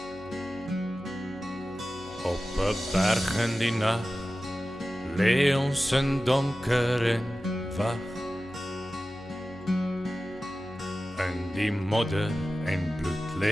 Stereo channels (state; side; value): noise; left; hum, 22 dB below the sound